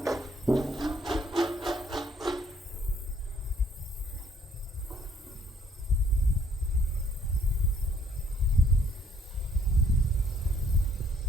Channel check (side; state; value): both; normal; correlation 0.64